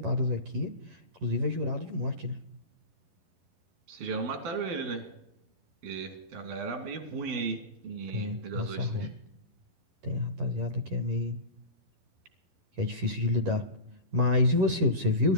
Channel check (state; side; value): late; left; 11 ms